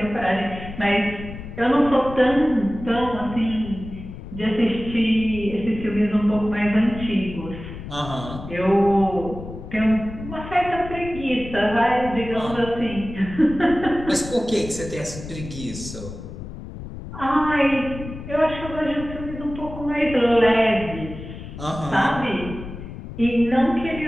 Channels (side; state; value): left; noise; rumble, 11 dB below the sound